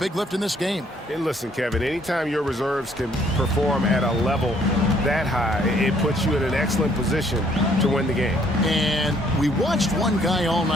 lift in this game. And listen, Kevin, anytime your reserves can perform at a level that high, it puts you in an excellent position to win the game. And we watched one guy all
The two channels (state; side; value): normal; both; correlation 0.65